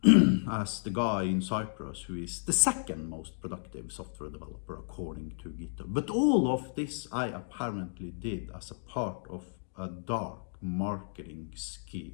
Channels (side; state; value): right; silent; digital silence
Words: as the guy in Cyprus who is the second most productive software developer according to GitHub. But all of this I apparently did as a part of a dark marketing